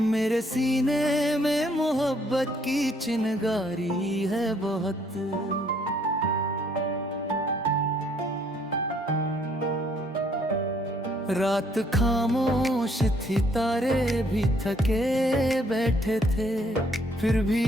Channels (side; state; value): both; normal; correlation 0.66